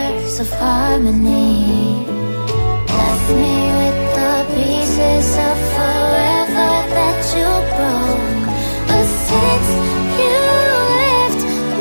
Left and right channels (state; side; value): inverted; both; correlation -1.00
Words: of harmony. Left me with the pieces of forever that you broke. But since you left